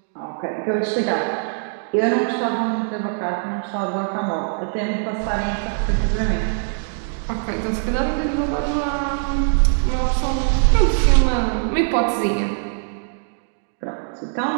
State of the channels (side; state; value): left; silent; 64 dB below the other